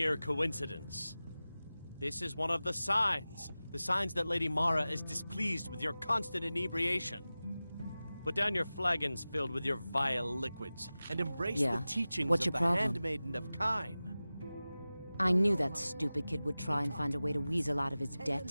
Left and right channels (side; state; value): both; inverted; correlation -0.96